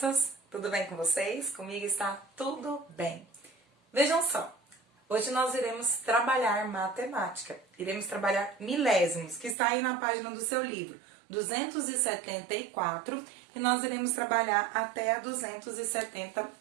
Tudo bem com vocês? Comigo está tudo bem. Vejam só, hoje nós iremos trabalhar matemática. Iremos trabalhar milésimos, que está aí na página do seu livro, 274, e nós iremos trabalhar até a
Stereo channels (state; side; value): drops out; left; at 9.6 s